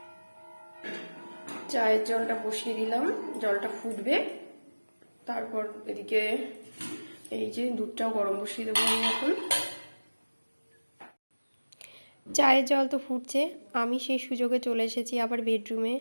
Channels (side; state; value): both; inverted; correlation -1.00